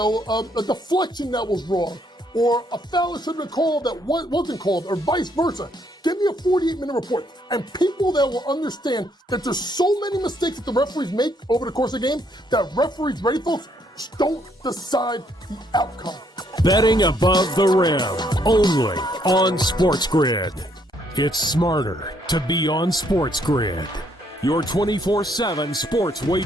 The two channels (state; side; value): normal; both; correlation 0.70